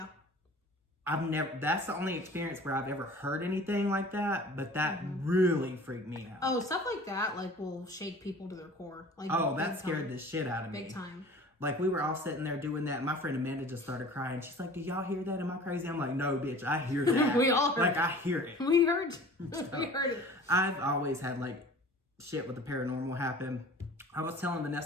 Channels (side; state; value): both; normal; correlation 0.44